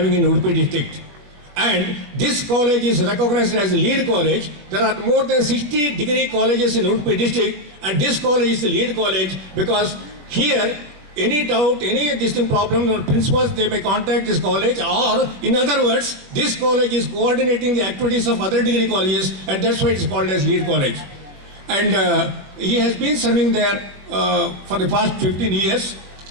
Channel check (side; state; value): left; late; 20 ms